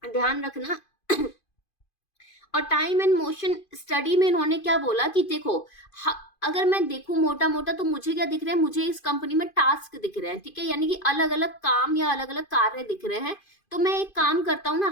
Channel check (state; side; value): late; right; 2.5 ms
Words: ध्यान रखना। और टाइम एंड मोशन स्टडी में इन्होंने क्या बोला कि देखो, अगर मैं देखूं मोटा मोटा तो मुझे क्या दिख रहा है, मुझे इस कंपनी में टास्क दिख रहे हैं। ठीक है, यानी कि अलग अलग काम या अलग अलग कार्य दिख रहे हैं। तो मैं एक काम करता हूँ ना,